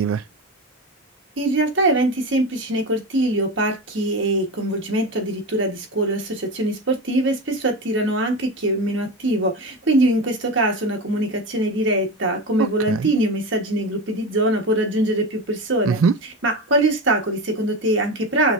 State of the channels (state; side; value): normal; both; correlation 0.23